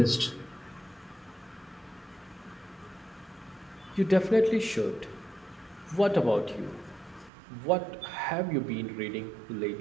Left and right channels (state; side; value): drops out; left; at 7.3 s